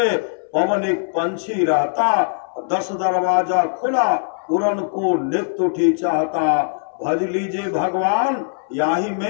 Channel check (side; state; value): right; silent; 64 dB below the other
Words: पवन एक पंछी रहता, 10 दरवाजा खुला उड़न को नित्य उठी चाहता। भज लीजिए भगवान याही